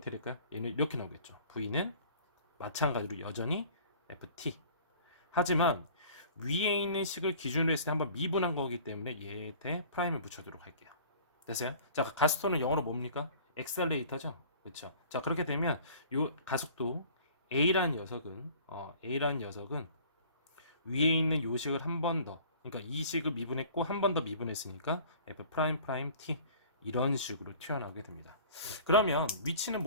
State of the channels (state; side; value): inverted; both; correlation -0.47